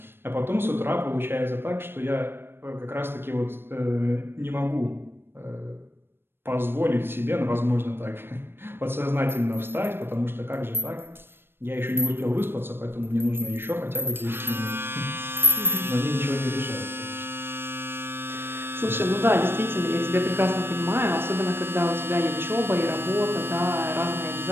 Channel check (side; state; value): left; late; 0.10 ms